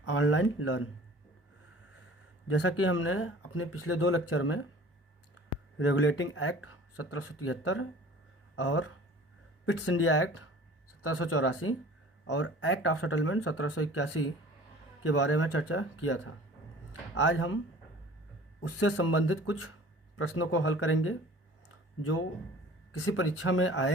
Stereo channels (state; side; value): normal; both; correlation 0.46